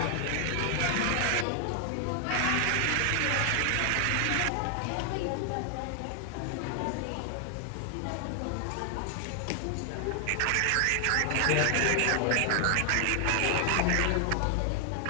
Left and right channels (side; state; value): both; different; correlation 0.00